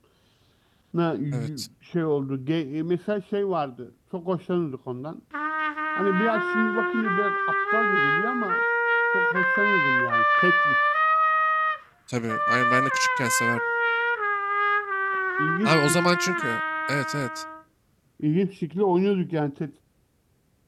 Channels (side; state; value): both; identical; correlation 1.00